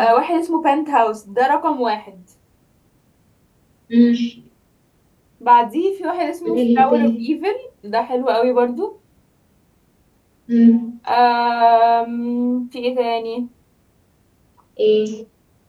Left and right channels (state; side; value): identical; both; correlation 1.00